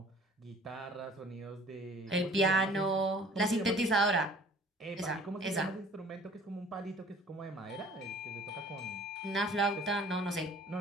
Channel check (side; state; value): both; normal; correlation 0.51